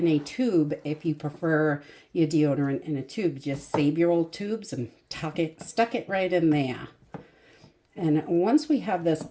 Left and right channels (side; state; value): both; identical; correlation 1.00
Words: a tube if you prefer your deodorant in a tube. Just save your old tubes and stuck it right in there. And once we have this